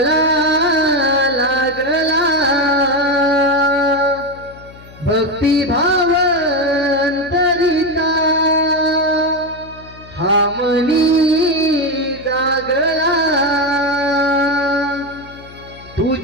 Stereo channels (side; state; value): left; noise; hum, 20 dB below the sound